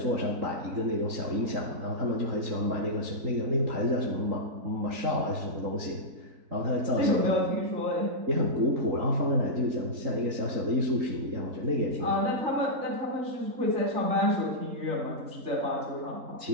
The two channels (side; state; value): left; late; 3.8 ms